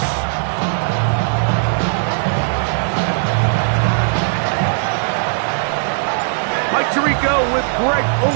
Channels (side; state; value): left; silent; digital silence